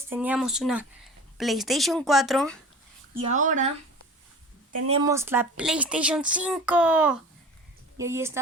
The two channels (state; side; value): normal; both; correlation 0.39